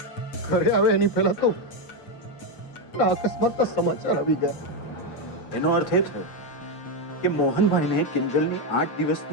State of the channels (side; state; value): right; late; 8.1 ms